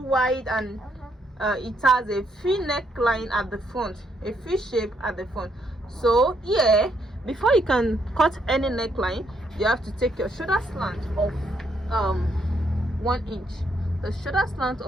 wide, and it has a V neckline at the front, a V shape at the front. So here, before you can cut any neckline, you have to take your shoulder slant of 1 inch. The shoulder slant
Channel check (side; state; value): both; normal; correlation 0.74